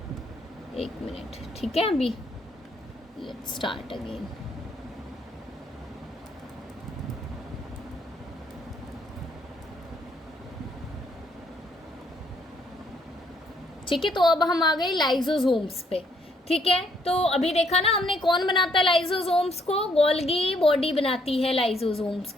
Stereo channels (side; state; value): both; normal; correlation 0.69